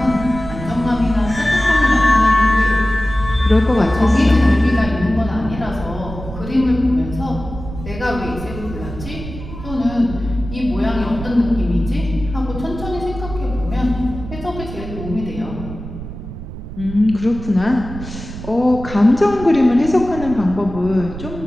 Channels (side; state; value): right; noise; rumble, 11 dB below the sound